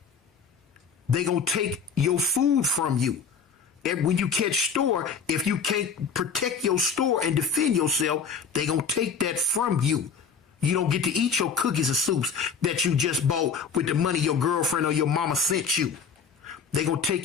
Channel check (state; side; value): quieter; right; 5.9 dB